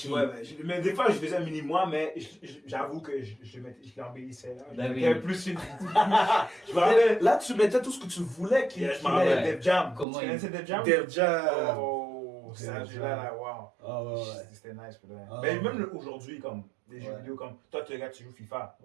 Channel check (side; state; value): left; drops out; at 10.1 s